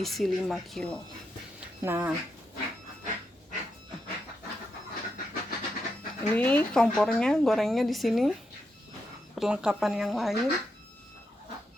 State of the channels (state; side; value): normal; both; correlation 0.84